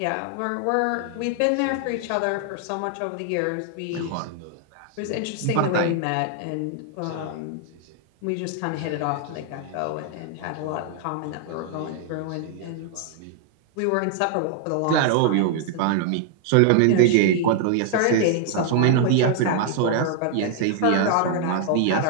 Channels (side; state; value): both; different; correlation 0.00